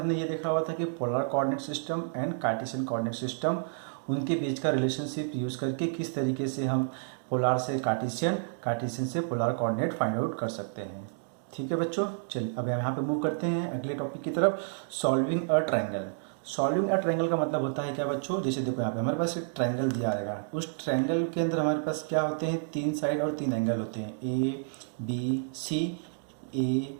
ये देखा हुआ था कि polar coordinate system and Cartesian coordinate system, उनके बीच का रिलेशनशिप यूज़ करके किस तरीके से हम पोलर से कार्टेशियन, कार्टेशियन से पोलर कोऑर्डिनेट फाइंड आउट कर सकते हैं। ठीक है बच्चों, चलिए अब यहाँ पे मूव करते हैं अगले टॉपिक की तरफ, solving a triangle. Solving a triangle का मतलब होता है क्या बच्चों, जैसे देखो यहाँ पे हमारे पास एक ट्रायंगल दिया रहेगा, उस ट्रायंगल के अंदर हमारे पास क्या होते हैं, 3 साइड और 3 एंगल होते हैं, ए बी सी, ए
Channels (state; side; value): silent; left; digital silence